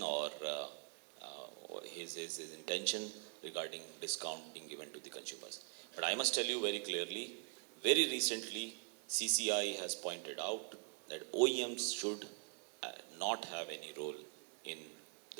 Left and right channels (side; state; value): left; quieter; 39.4 dB